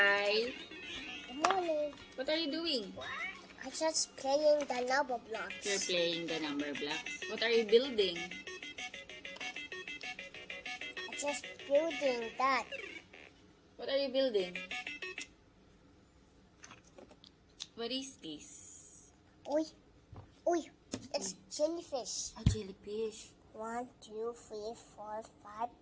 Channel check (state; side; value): identical; both; correlation 1.00